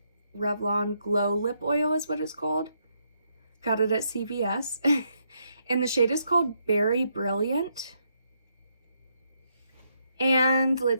Revlon Glow Lip Oil is what it's called. Got it at CVS. And the shade is called Berry Brilliant. And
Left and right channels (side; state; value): both; inverted; correlation -0.77